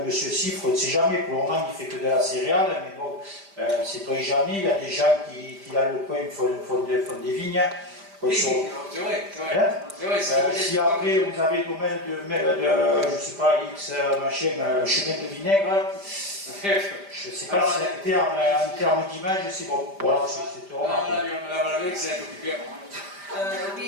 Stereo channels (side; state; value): left; late; 5.0 ms